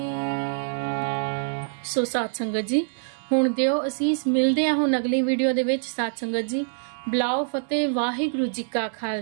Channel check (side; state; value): left; silent; digital silence